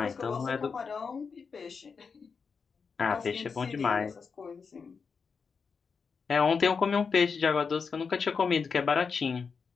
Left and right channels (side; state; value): right; quieter; 5.5 dB